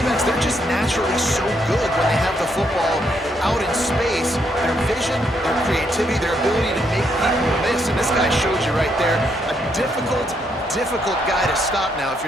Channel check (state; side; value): normal; both; correlation 0.75